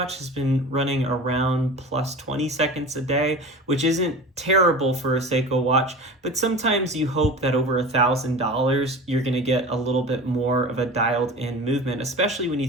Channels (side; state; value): both; normal; correlation 0.34